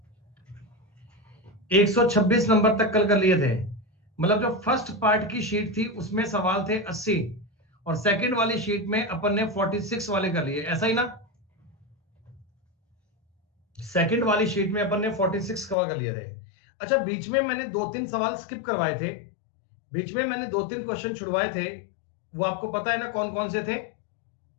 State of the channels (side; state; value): right; drops out; at 15.8 s